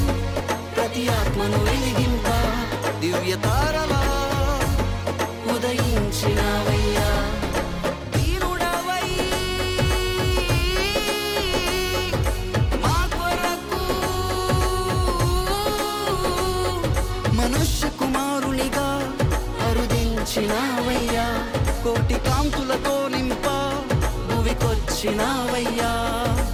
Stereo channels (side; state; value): both; identical; correlation 1.00